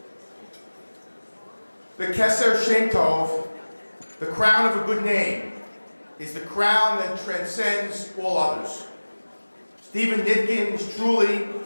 The Keser Shem Tov, the crown of a good name, is the crown that transcends all others. Stephen Nitkin is truly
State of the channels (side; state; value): both; inverted; correlation -1.00